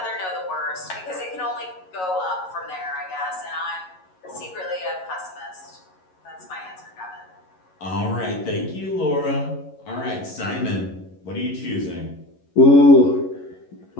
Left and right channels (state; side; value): late; right; 11 ms